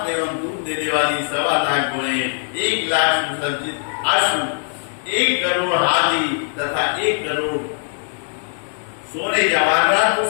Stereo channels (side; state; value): right; silent; digital silence